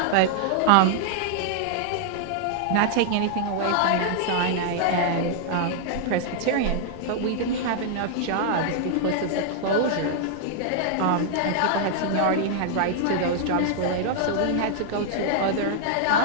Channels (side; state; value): both; different; correlation -0.01